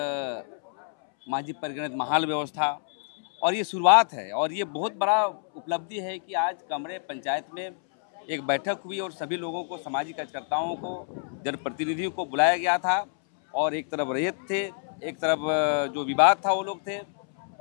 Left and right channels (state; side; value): silent; right; 60 dB below the other